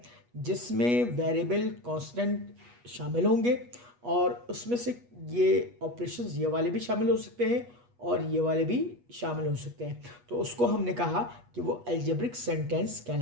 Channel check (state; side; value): late; left; 8.3 ms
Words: जिसमें वेरिएबल कांस्टेंट शामिल होंगे, और उसमें से ये ऑपरेशंस ये वाले भी शामिल हो सकते हैं और ये वाले भी शामिल हो सकते हैं। तो उसको हमने कहा कि वो अलजेब्रिक सेंटेंस